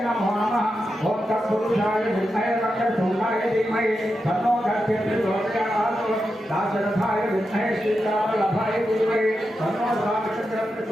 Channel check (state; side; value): normal; both; correlation 0.88